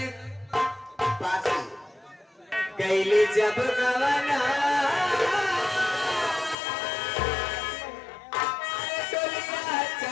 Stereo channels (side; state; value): right; drops out; at 6.6 s